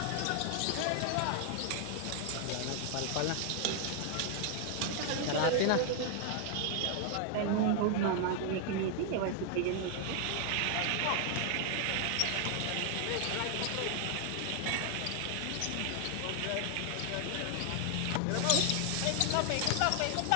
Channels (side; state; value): both; different; correlation 0.00